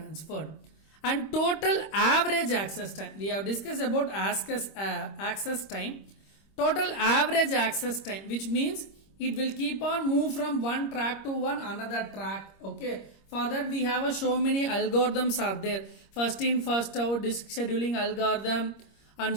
And total average access time. We have discussed about access time. Total average access time, which means it will keep on move from one track to one another track. Okay. For that we have so many algorithms are there. First in first out, disk scheduling algorithm, and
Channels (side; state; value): right; late; 25 ms